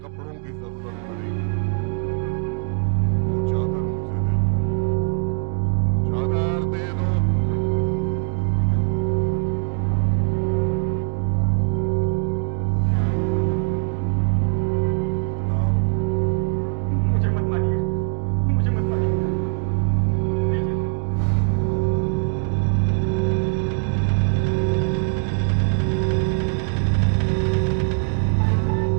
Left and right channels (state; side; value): silent; left; 64 dB below the other